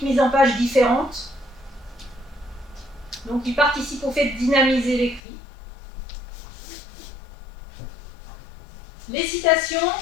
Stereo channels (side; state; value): right; drops out; at 5.2 s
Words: mise en page différente. Donc, il participe au fait de dynamiser l'écrit. Les citations,